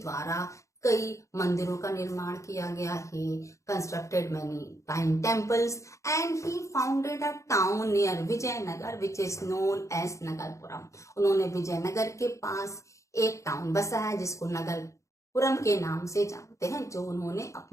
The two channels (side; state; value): right; late; 0.15 ms